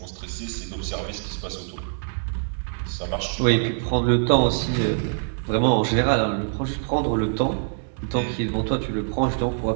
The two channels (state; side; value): silent; left; digital silence